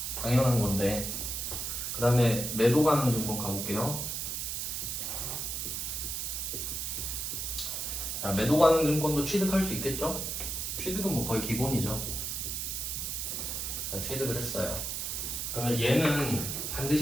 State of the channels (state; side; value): noise; right; hiss, 3 dB below the sound